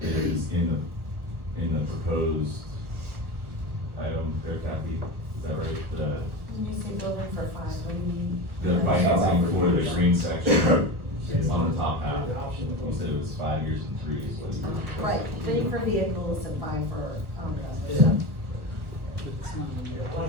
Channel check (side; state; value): left; late; 1.2 ms